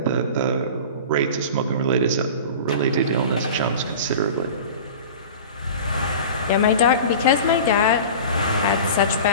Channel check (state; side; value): inverted; both; correlation -0.36